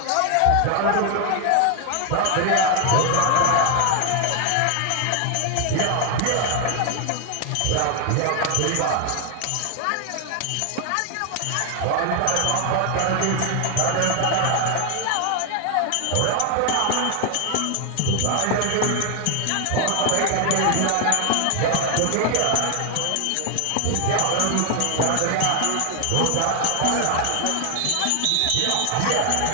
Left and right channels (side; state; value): both; different; correlation 0.01